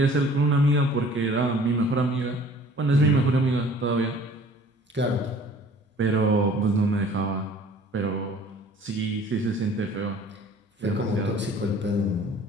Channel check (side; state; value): both; normal; correlation 0.51